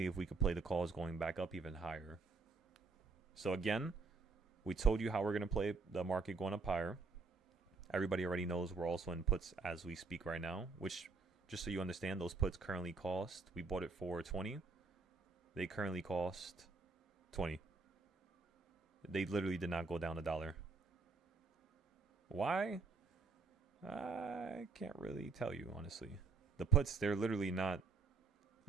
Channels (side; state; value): left; quieter; 4.4 dB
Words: if we could play the calls going back up even higher. So again, we told you how we're going to play the market going up higher. Everybody already knows we're also in puts as we speak right now, which, just so you understand, those puts currently cost, we bought it for 20. They currently cost 20. They literally did not go down $1. Why? I can't really tell you, honestly. The puts, they're literally not